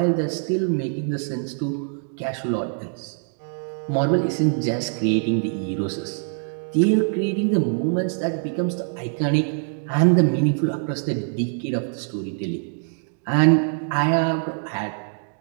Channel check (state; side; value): silent; left; 60 dB below the other